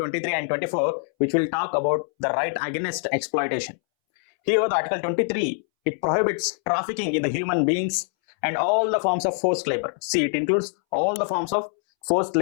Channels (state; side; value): silent; right; 63 dB below the other